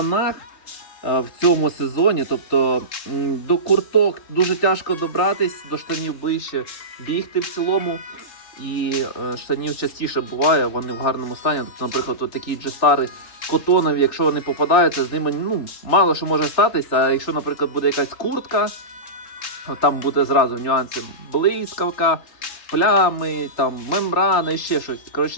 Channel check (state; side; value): late; right; 3.6 ms